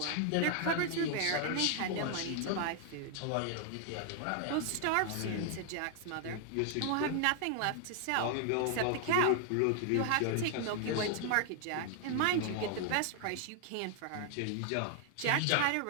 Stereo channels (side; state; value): both; different; correlation 0.00